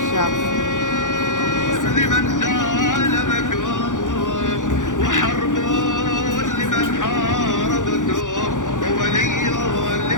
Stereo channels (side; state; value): right; late; 0.87 ms